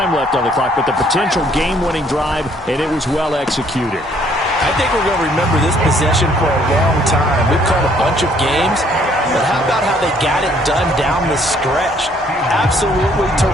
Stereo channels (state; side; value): normal; both; correlation 0.63